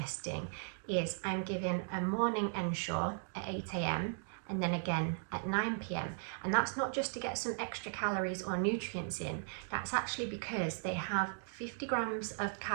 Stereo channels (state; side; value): silent; left; digital silence